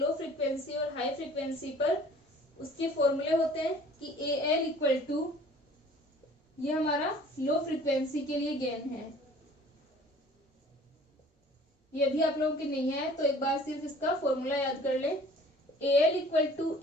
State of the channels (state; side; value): normal; both; correlation 0.50